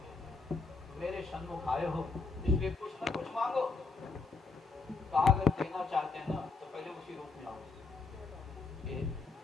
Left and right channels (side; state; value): right; quieter; 4.1 dB